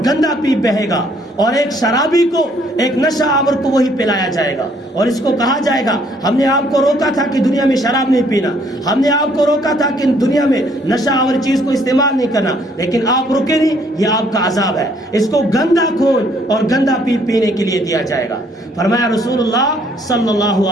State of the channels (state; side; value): normal; both; correlation 0.65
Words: گندا پیپ بہے گا، اور ایک شرابی کو، ایک نشہ آور کو وہی پلایا جائے گا، اور اس کو کہا جائے گا ہم نے آپ کو روکا تھا کہ دنیا میں شراب نہیں پینا، ہم نے آپ کو روکا تھا کہ دنیا میں نشہ آور چیز کو استعمال نہیں کرنا، لیکن آپ رکے نہیں، یہ آپ کا عذاب ہے، اس کو گندا خون اور گندا پیپ پینے کے لیے دیا جائے گا۔ فرمایا رسول اللہ صلی اللہ